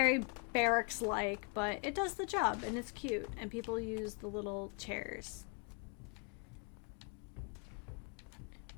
barracks-like, but it does the job and it's cute, and people use the little chairs.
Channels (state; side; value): quieter; right; 36.0 dB